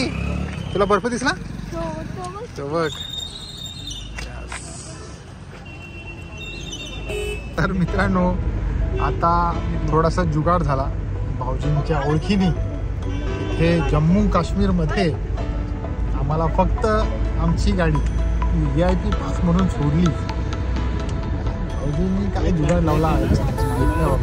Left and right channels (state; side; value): identical; both; correlation 1.00